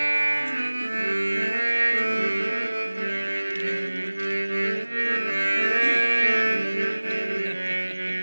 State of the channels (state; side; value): inverted; both; correlation -1.00